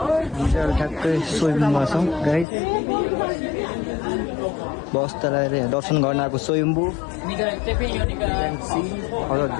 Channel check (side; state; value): right; drops out; at 2.5 s